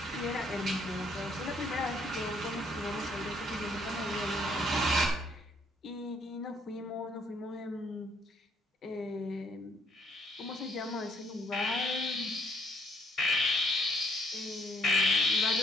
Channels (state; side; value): normal; both; correlation 0.67